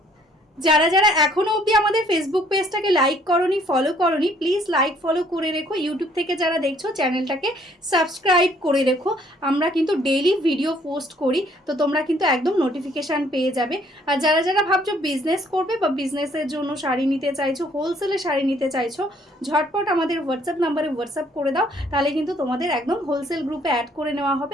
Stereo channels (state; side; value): normal; both; correlation 0.62